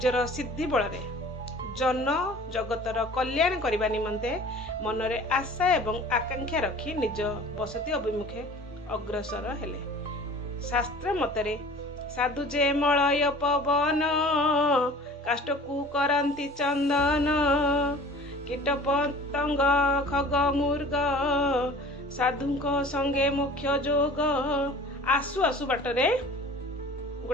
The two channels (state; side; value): normal; both; correlation 0.44